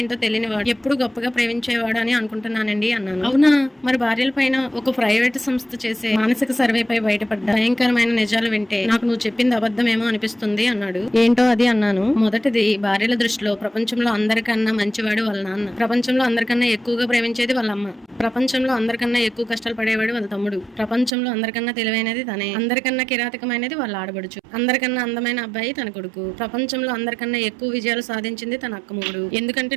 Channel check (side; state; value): left; drops out; at 21.1 s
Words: తెలియనివాడు, ఎప్పుడు గొప్పగా ప్రేమించేవాడు అని అనుకుంటున్నానండి అన్నాను. అవునా? మరి భార్యల పైన ఒక ప్రైవేట్ సంస్థ చేసే మానసిక సర్వేపై బయటపడ్డ భయంకరమైన నిజాలు వింటే నాకు నువ్వు చెప్పింది అబద్ధమేమో అనిపిస్తుంది అన్నాడు. ఏంటో అది అన్నాను. మొదటిది, భార్యల దృష్టిలో ప్రపంచంలో అందరికన్నా మంచివాడు వాళ్ళ నాన్న, ప్రపంచంలో అందరికన్నా ఎక్కువగా ప్రేమించేది వాళ్ళ అమ్మ, ప్రపంచంలో అందరికన్నా ఎక్కువ కష్టాలు పడేవాడు వాళ్ళ తమ్ముడు, ప్రపంచంలో అందరికన్నా తెలివైనది తనే, అందరికన్నా కిరాతకమైనది వాళ్ళ ఆడబడుచు, అందరికన్నా అందమైన అబ్బాయి తన కొడుకు, ప్రపంచంలో అందరికన్నా ఎక్కువ విజయాలు సాధించింది తన అక్క మొగుడు. ఎందుకంటే